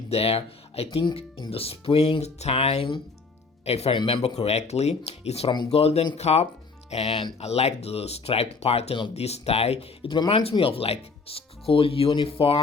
there, I think in the springtime, if I remember correctly. It's from Golden Cup, and I like the striped pattern of this tie. It reminds me of like school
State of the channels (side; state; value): right; quieter; 4.3 dB